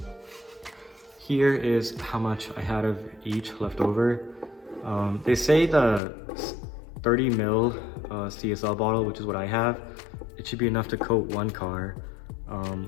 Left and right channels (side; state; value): right; drops out; at 6.0 s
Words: here is how much I had of each left over. They say the 30 ml CSL bottle, which is what I have, it should be enough to coat one car.